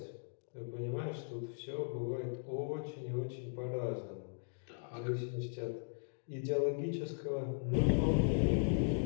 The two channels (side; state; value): right; silent; digital silence